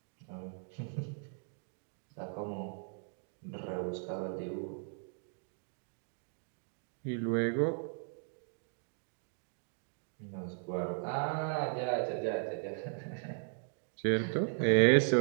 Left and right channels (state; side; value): silent; left; 53 dB below the other